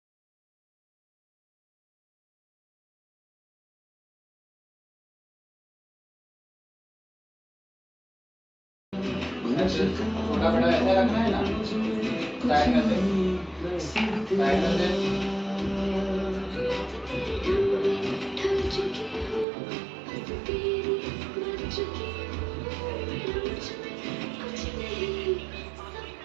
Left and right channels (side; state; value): left; drops out; at 19.5 s